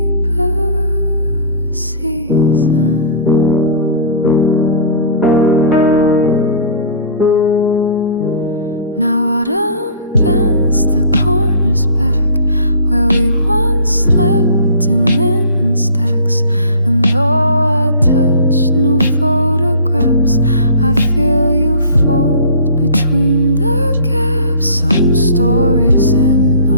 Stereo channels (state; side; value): inverted; both; correlation -0.45